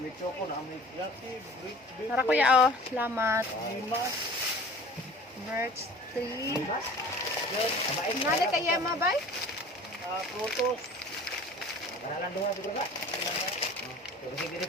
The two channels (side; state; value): both; normal; correlation 0.44